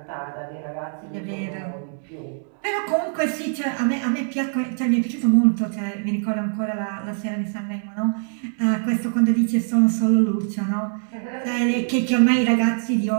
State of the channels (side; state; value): left; silent; 63 dB below the other